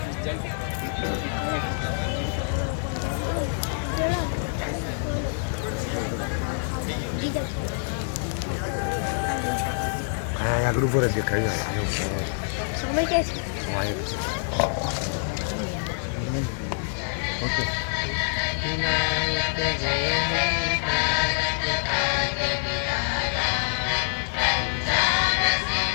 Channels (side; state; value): right; silent; digital silence